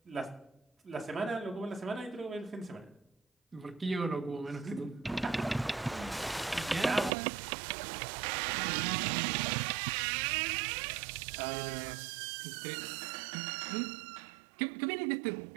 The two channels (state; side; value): drops out; left; at 7.1 s